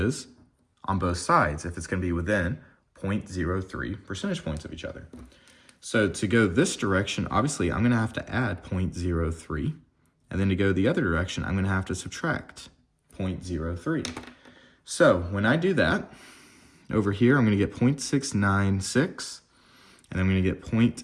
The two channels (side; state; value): both; identical; correlation 1.00